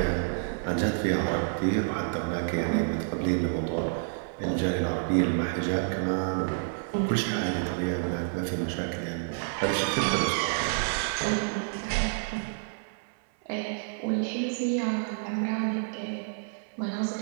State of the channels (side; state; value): left; silent; 59 dB below the other